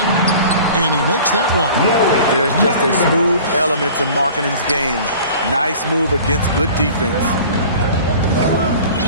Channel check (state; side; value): inverted; both; correlation -0.44